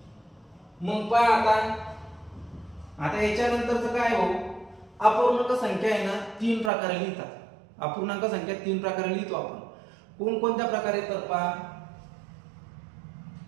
मग पहा आता याच्यानंतरचं काय हो? अपूर्णांक संख्या आहे ना 3 प्रकारे लिहितात। अपूर्णांक संख्या 3 प्रकारे लिहितो आपण। कोणकोणत्या प्रकारे? तर पहा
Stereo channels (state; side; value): drops out; left; at 6.7 s